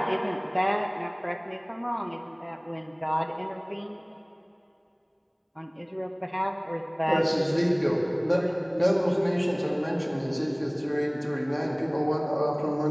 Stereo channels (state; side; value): identical; both; correlation 1.00